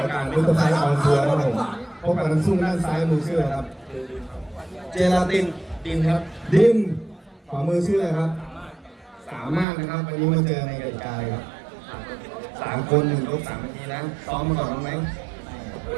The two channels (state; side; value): drops out; left; at 9.7 s